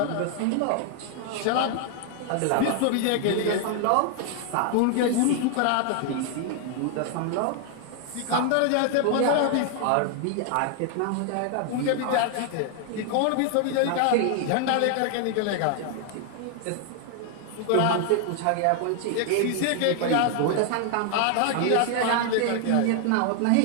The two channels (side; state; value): both; different; correlation 0.00